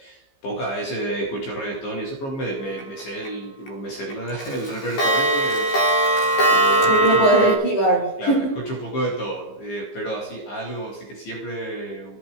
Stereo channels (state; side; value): late; right; 15 ms